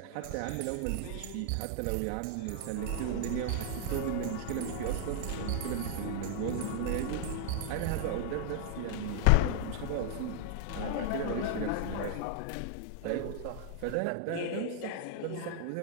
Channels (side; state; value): both; different; correlation -0.01